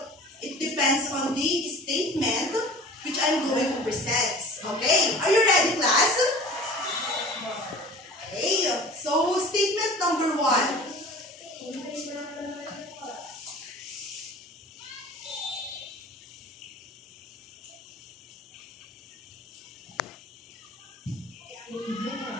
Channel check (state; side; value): normal; both; correlation 0.42